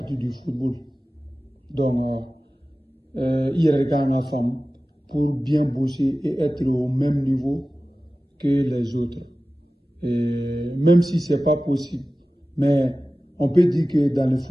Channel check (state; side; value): normal; both; correlation 0.96